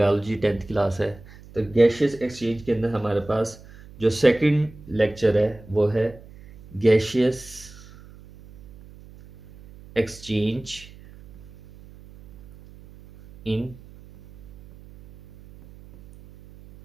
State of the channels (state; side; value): noise; right; hum, 21 dB below the sound